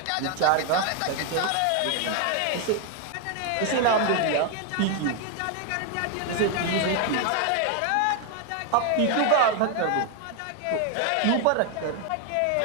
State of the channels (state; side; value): different; both; correlation 0.01